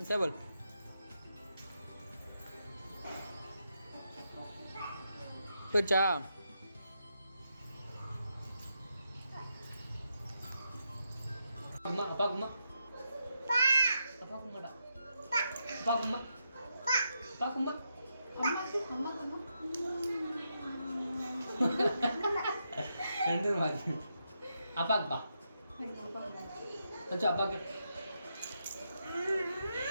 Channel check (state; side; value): inverted; both; correlation -0.83